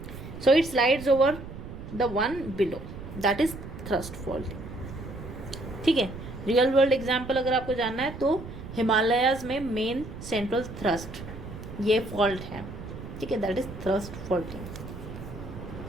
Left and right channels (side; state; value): right; noise; rumble, 11 dB below the sound